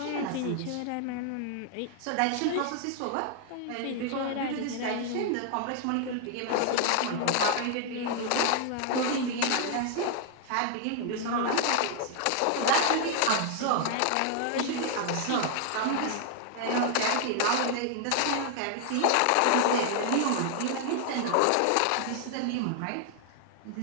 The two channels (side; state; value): both; different; correlation 0.00